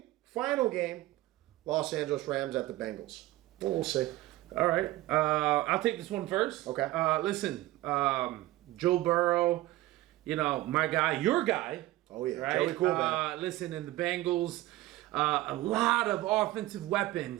Los Angeles Rams at the Bengals. Well, we'll see. All right. I'll take this one first. Okay. Listen, Joe Burrow, my guy, your guy. Oh, yeah. Right? Joey Coolman. Listen, in the Bengals, a lot of offensive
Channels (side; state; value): left; quieter; 17.3 dB